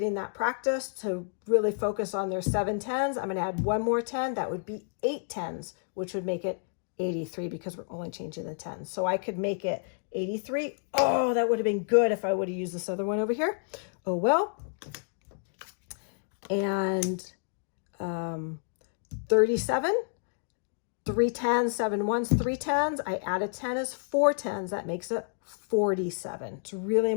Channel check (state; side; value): silent; right; digital silence